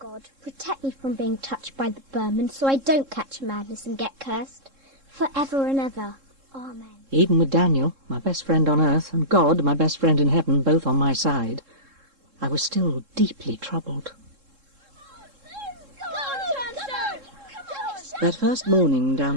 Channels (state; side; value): late; left; 3.7 ms